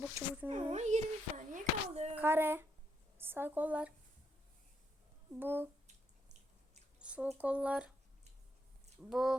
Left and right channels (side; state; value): both; normal; correlation 0.77